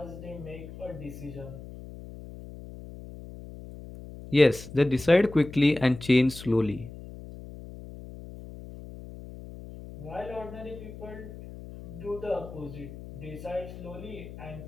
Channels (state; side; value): noise; left; hum, 14 dB below the sound